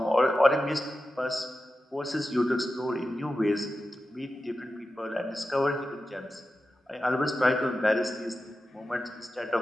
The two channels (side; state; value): both; normal; correlation 0.92